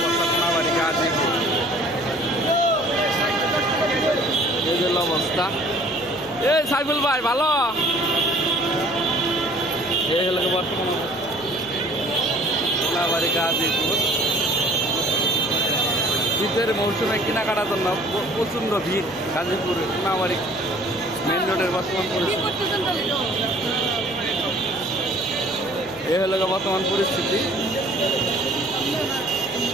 কোনাবাড়ি গাজীপুর। এই হলো অবস্থা। এই সাইফুল ভাই ভালো। এই হলো বর্তমান কোনাবাড়ি গাজীপুর। শীতের মৌসুমে কেনাকাটার জন্য প্রচণ্ড ভিড় গাজীপুর কোনাবাড়ি মেন রোডের বর্তমান পরিস্থিতি। এই হলো বর্তমান পরিস্থিতি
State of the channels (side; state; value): left; noise; hum, 22 dB below the sound